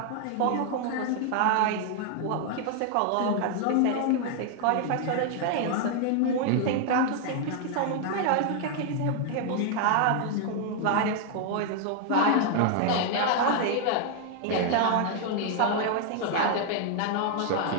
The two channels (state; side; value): different; both; correlation 0.00